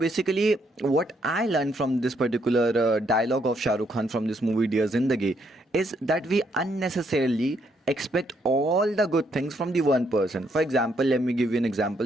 what I learned from this particular dialogue of Shah Rukh Khan from this movie Dear Zindagi is that we unnecessarily expect all the good things from the one person. For example, let me give you an example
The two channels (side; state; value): both; normal; correlation 0.73